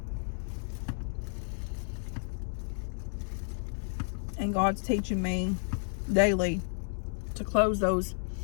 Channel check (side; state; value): right; silent; digital silence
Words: And God's teaching me daily to close those